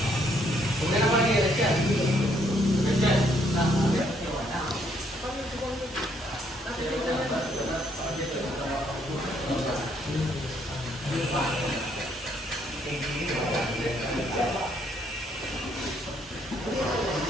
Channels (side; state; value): both; normal; correlation 0.70